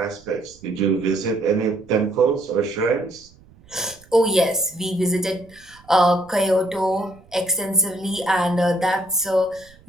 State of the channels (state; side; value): noise; right; rumble, 27 dB below the sound